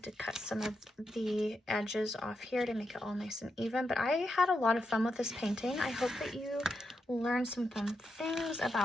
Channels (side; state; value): both; normal; correlation 0.84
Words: to cut some of the edges off here to make it all nice and even, but I had a lot of fun with this painting. I hope that you learned some fun things